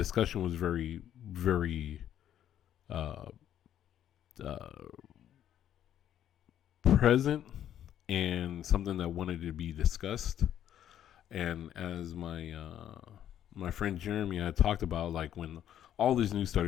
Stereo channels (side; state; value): right; quieter; 10.7 dB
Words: was very, very uh, uh, present and something that wanted to be discussed. And as my friend Jeremy had talked about, like when all this news